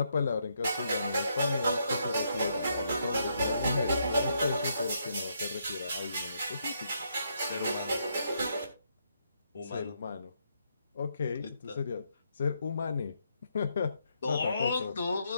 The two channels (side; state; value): both; inverted; correlation -0.77